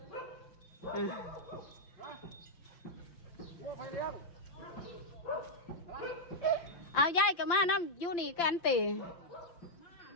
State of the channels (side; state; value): right; late; 5.7 ms